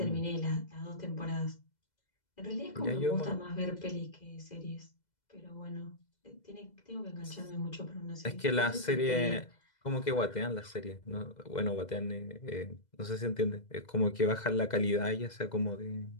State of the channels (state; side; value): late; right; 2.0 ms